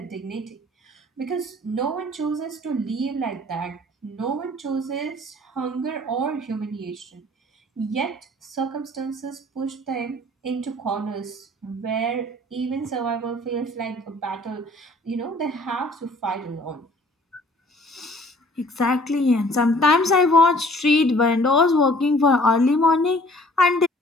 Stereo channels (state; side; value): normal; both; correlation 0.54